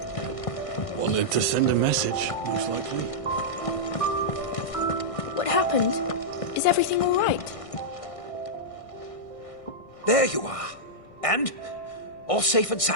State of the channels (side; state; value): right; late; 1.6 ms